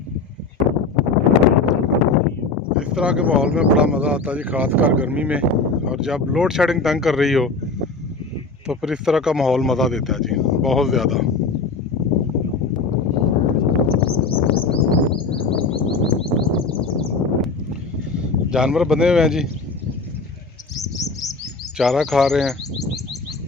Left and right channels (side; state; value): right; quieter; 4.0 dB